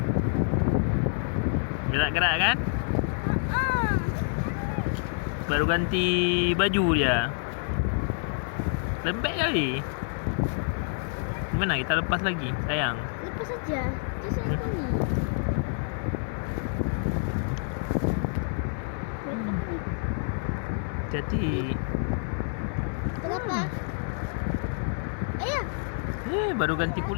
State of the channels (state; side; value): silent; right; digital silence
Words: Gerak-gerak kan? Baru ganti baju dia. Lembek kali. Gimana kita lepas lagi, sayang? Lepas saja. Dia sayang kami. Jadi Kenapa? Ayah. baru ganti